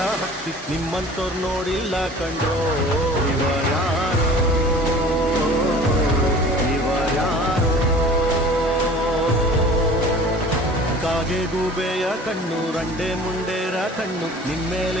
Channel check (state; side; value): normal; both; correlation 0.45